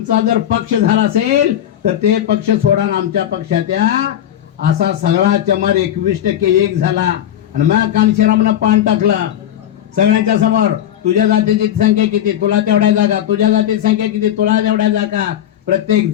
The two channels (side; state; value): right; quieter; 11.2 dB